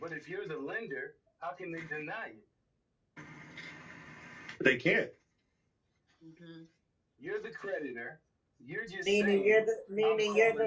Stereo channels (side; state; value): both; identical; correlation 1.00